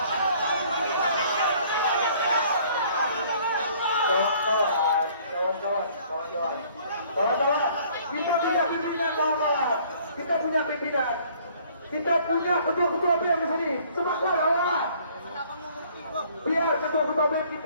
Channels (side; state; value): both; inverted; correlation -0.58